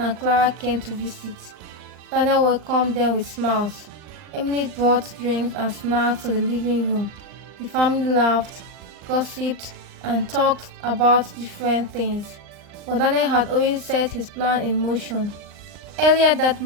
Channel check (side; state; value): left; late; 39 ms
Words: Clara came to visit. Daniel welcomed them with smiles. Emily brought drinks and snacks to the living room. The family laughed, gossiped, and talked about different things. But Daniel had already set his plan in motion. Earlier that